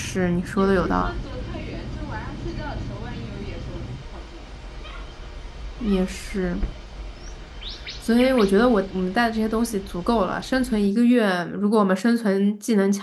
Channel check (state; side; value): identical; both; correlation 1.00